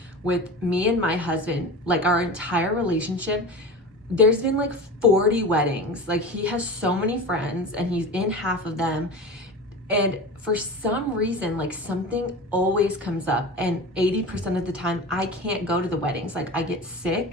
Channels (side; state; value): both; normal; correlation 0.30